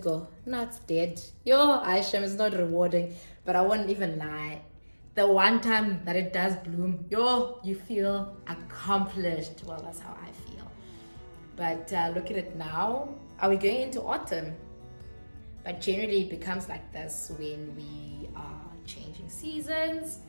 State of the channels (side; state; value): both; inverted; correlation -1.00